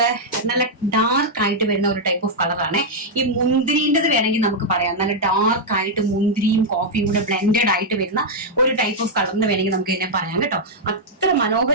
നല്ല ഡാർക്ക് ആയിട്ട് വരുന്ന ഒരു ടൈപ്പ് ഓഫ് കളറാണ്. ഈ മുന്തിരിൻ്റെത് വേണമെങ്കിൽ നമുക്ക് പറയാം, നല്ല ഡാർക്ക് ആയിട്ട് മുന്തിരിയും കോഫിയും കൂടെ ബ്ലെൻഡഡ് ആയിട്ട് വരുന്ന ഒരു ടൈപ്പ് ഓഫ് കളറിന് വേണമെങ്കിൽ നമുക്ക് ഇതിനെ പറയാം കേട്ടോ. അത്ര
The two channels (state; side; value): normal; both; correlation -0.04